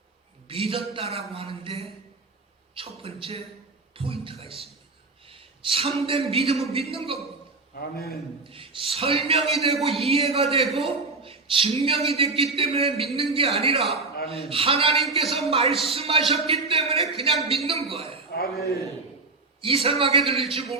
믿었다라고 하는데 첫 번째 포인트가 있습니다. 참된 믿음은 믿는 겁니다. 아멘. 설명이 되고 이해가 되고 증명이 됐기 때문에 믿는 게 아니라 아멘. 하나님께서 말씀하셨기 때문에 그냥 믿는 거예요. 아멘. 이상하게 들릴지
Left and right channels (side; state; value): left; quieter; 3.8 dB